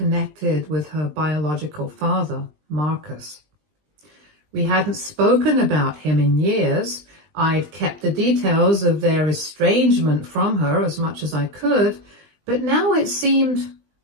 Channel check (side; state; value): left; late; 20 ms